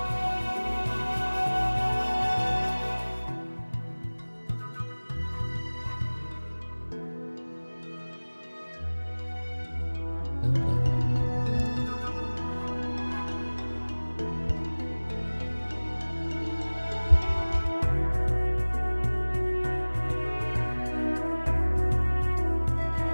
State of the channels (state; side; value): inverted; both; correlation -1.00